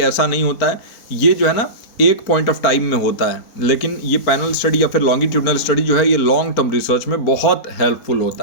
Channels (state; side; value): late; right; 4.4 ms